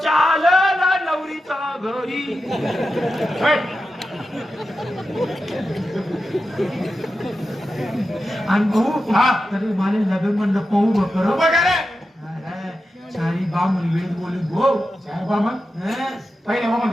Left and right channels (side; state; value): both; normal; correlation 0.91